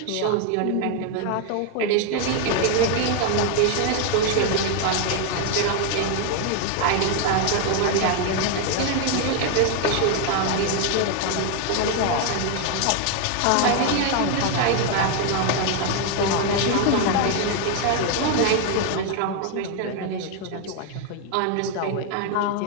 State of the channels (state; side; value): different; both; correlation 0.01